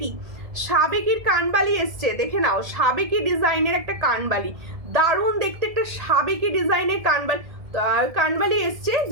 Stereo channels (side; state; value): left; late; 1.7 ms